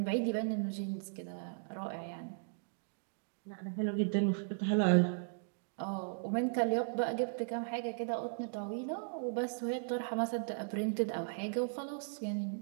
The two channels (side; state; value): left; silent; digital silence